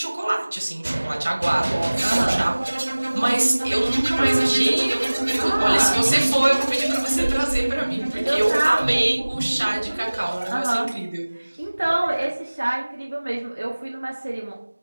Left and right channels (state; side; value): inverted; both; correlation -1.00